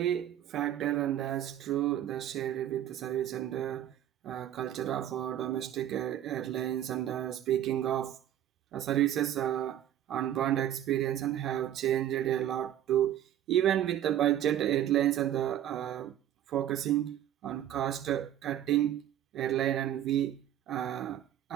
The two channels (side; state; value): left; quieter; 11.4 dB